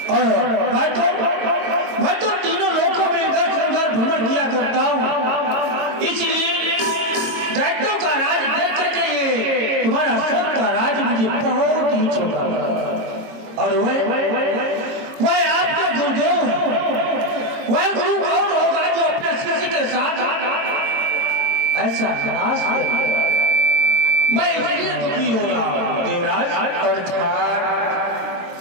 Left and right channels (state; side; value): late; left; 22 ms